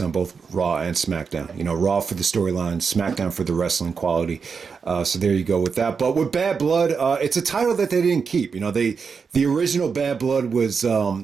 both Raw and SmackDown. Raw for the storylines, SmackDown for the wrestling quality. So there you go with that. But with Bad Blood, it's a title that they didn't keep. The original Bad Blood was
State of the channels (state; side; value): quieter; left; 5.6 dB